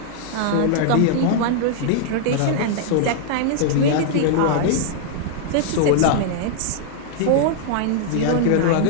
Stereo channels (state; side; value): different; both; correlation -0.01